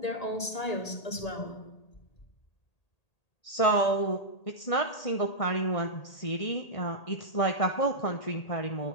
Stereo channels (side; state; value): right; late; 1.8 ms